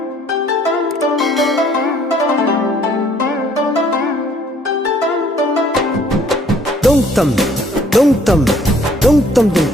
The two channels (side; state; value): both; normal; correlation 0.61